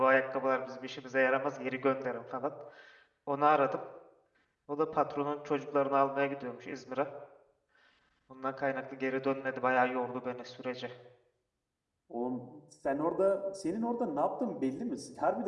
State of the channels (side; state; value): both; identical; correlation 1.00